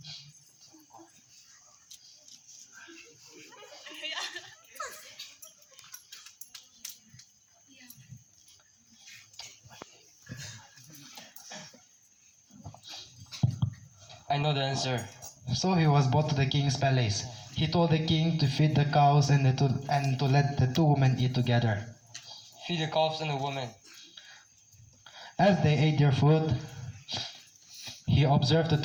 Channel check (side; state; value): both; identical; correlation 1.00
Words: I know the answer. So he was brought to the king's palace. He told the king to feed the cows and to let the two women eat together. Feed the calves and the woman. As they ate their food, he observed the